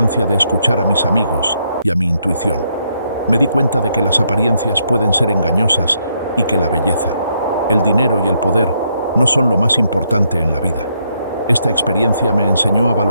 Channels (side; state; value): both; inverted; correlation -0.76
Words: de escuchar a mis amigos y a mi intuición. Me di cuenta de que las apariencias pueden ser engañosas y que la belleza, el dinero y el poder no son lo más importante en la vida. Esta experiencia me enseñó a